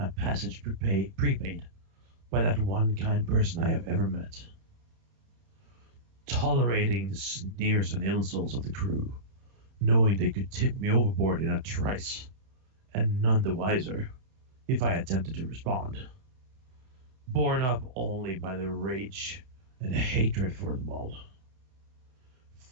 passage prepaid by that one kind person I have ever met, tolerating the sneers and insults of the crew, knowing they could tip me overboard in a trice, and none the wiser if I attempted to respond, borne up only by the rage and hatred for them all.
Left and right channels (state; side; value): late; left; 31 ms